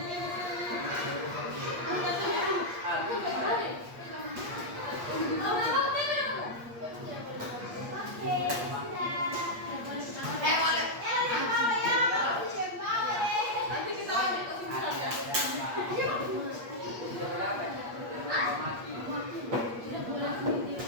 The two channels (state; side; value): late; left; 8.5 ms